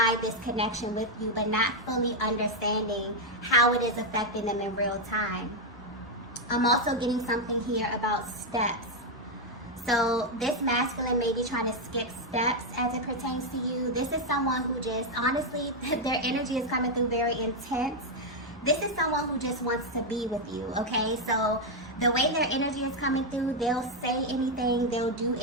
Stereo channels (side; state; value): both; normal; correlation 0.02